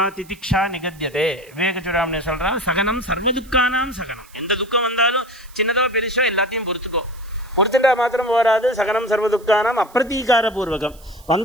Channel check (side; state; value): right; noise; hiss, 25 dB below the sound